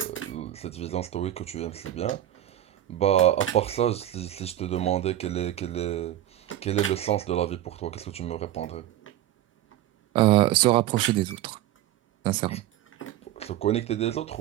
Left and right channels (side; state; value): left; quieter; 13.0 dB